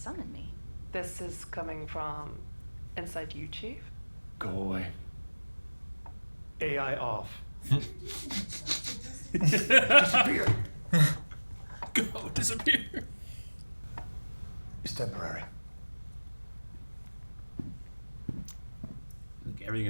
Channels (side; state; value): both; inverted; correlation -1.00